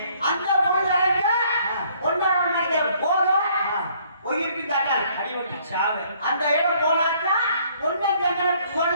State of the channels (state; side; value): inverted; both; correlation -0.62